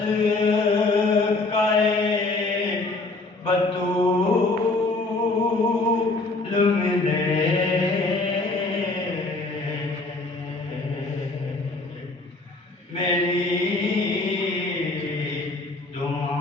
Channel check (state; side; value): quieter; right; 3.2 dB